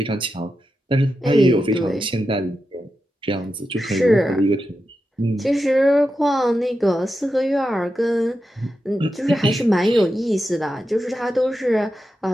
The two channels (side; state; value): both; normal; correlation 0.89